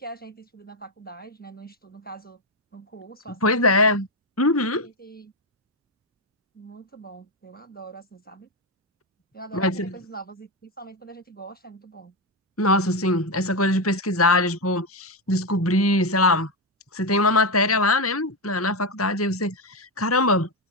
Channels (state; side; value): normal; both; correlation 0.08